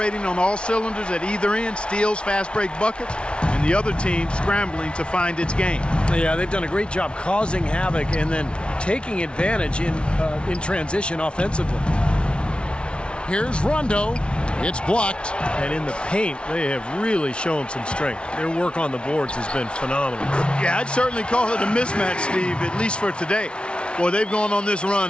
on all cylinders at either end, steals, fast break buckets, and the other team scrambling to find its game. Yeah, they've done a great job causing havoc and then taking advantage in transition offensively. Here's Rondo. It's blocked. And in the paint, they have really shown some strength. Their work on the boards has been phenomenal. Yeah, I'd certainly call it a mismatch, Steve, at least for today. Boy, they've gone on this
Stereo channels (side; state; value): right; late; 0.058 ms